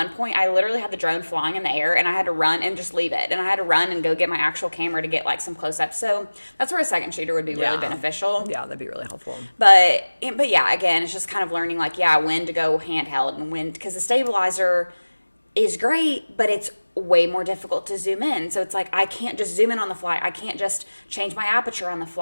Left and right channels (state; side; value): inverted; both; correlation -1.00